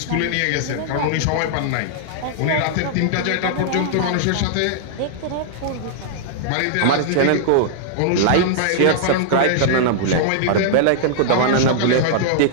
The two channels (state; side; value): different; both; correlation -0.01